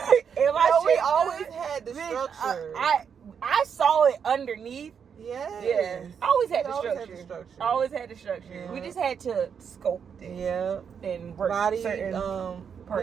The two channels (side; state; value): left; quieter; 7.1 dB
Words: Am I shaped? We always had the structure. I saw it underneath. Yeah. I always had the structure. Always had the structure. Yeah. We just had to sculpt it. Yeah. And work body certain parts.